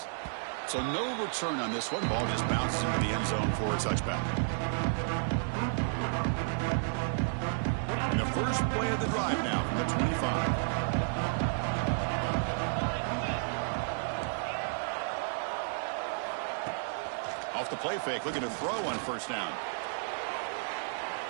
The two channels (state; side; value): silent; left; 56 dB below the other